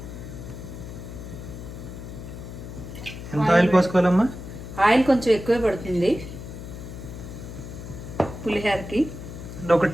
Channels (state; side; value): noise; left; hum, 11 dB below the sound